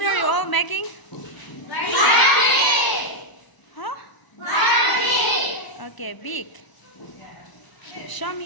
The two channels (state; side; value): late; right; 1.0 ms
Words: are you all making? Huh? Okay, big. Show